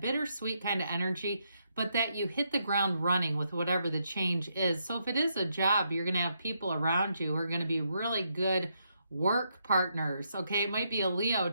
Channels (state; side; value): inverted; both; correlation -0.78